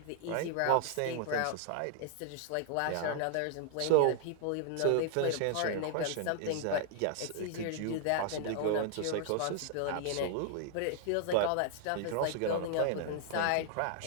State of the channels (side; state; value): both; different; correlation 0.00